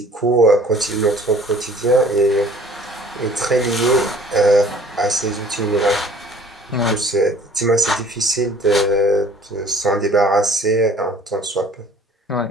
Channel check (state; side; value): normal; both; correlation 0.52